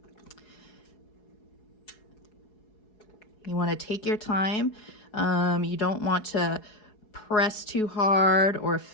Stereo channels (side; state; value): right; late; 4.7 ms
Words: You want to take your time. You don't want to press too hard or